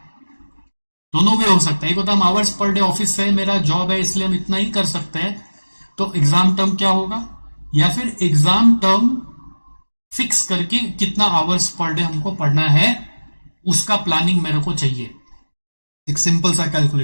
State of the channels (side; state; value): both; inverted; correlation -1.00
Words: दोनों वे हो सकता है। एक होता है हम आवर्स पर डे ऑफिस से मेरा जॉब है इसलिए हम इतना ही कर सकते हैं, तो एग्जाम टर्म क्या होगा, या फिर एग्जाम टर्म फिक्स करके कितना आवर्स पर डे हमको पढ़ना है उसका प्लानिंग मेरे को चाहिए। एक सिंपल सा